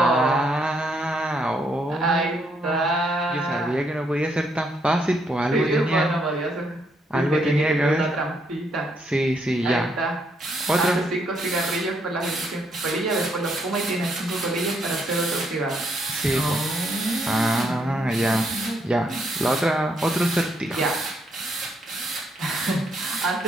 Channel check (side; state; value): both; normal; correlation 0.74